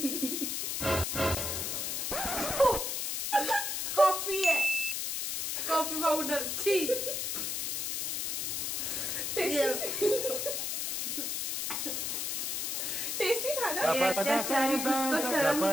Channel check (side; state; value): left; noise; hiss, 1 dB below the sound